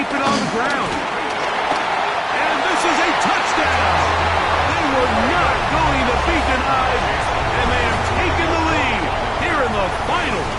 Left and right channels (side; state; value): both; identical; correlation 1.00